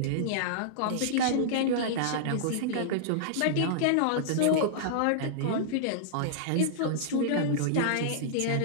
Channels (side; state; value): both; different; correlation -0.02